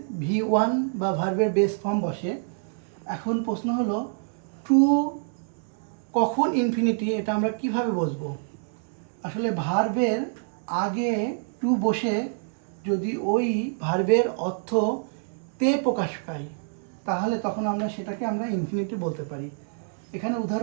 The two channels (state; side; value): silent; left; 60 dB below the other